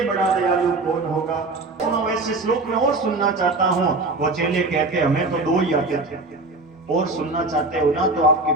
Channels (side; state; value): left; quieter; 3.2 dB